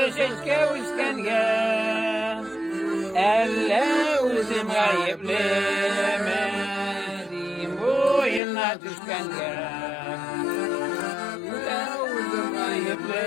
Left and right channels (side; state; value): right; drops out; at 8.4 s